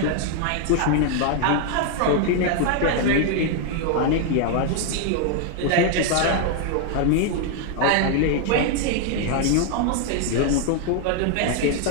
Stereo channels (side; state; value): both; different; correlation 0.00